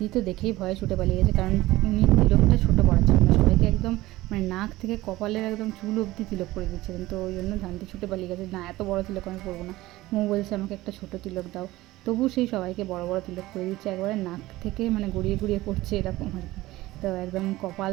তো দেখেই ভয়ে ছুটে পালিয়ে গেছে, কারণ উনি তিলকটা ছোটো পড়াচ্ছিলেন না, সবাইকে একদম মানে নাক থেকে কপালের একদম চুল অবধি তিলক পরিয়ে দিচ্ছিলেন। তো ওই জন্য ধানতি ছুটে পালিয়ে গেছে, না এত বড় তিলক আমি পরবো না, মৌ বলছে আমাকে একটা ছোটো তিলক দাও। তবু সেই সবাইকে বড় বড় তিলক পরিয়ে দিচ্ছে, একবারে নাক থেকে মানে গড়িয়ে গড়িয়ে পড়ছে এরকম আর কি। তো একদম কপাল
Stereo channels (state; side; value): quieter; left; 17.7 dB